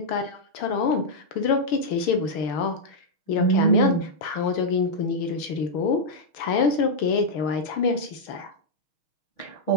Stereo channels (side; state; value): right; late; 6.4 ms